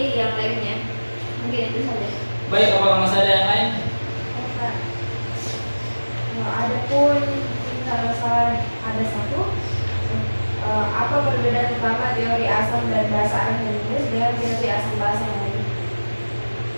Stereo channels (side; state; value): both; inverted; correlation -1.00